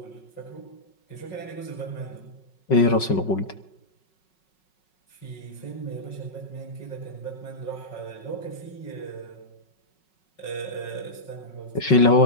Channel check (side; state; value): right; late; 5.4 ms